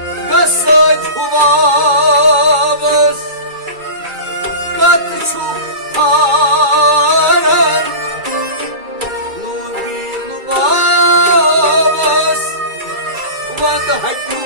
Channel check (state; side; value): late; left; 2.3 ms